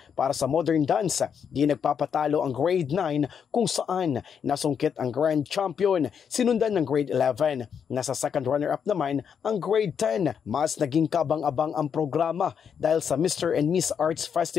Para sa modern dance, di nagpapatalo ang grade 9 kung saan nasungkit ang grand champion, sinundan ng grade 11. Nasa second runner-up naman ang grade 10. Mas naging kabang-abang ang programa dahil sa Mr. and Miss Arts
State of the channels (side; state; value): right; quieter; 7.3 dB